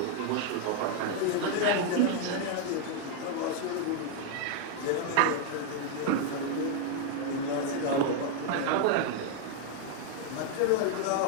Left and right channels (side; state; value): both; different; correlation 0.00